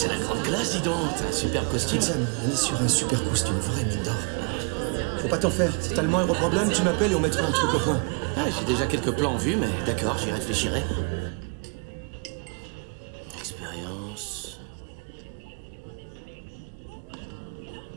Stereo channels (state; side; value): quieter; left; 36.0 dB